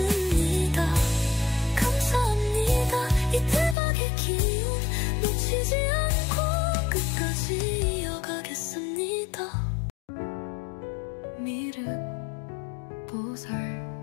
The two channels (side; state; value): right; drops out; at 3.8 s